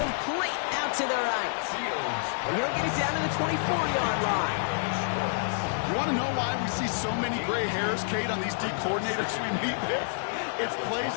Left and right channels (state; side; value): silent; right; digital silence